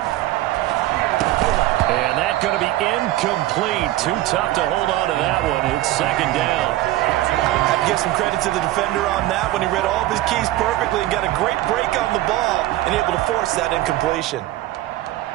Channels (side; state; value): left; quieter; 16.0 dB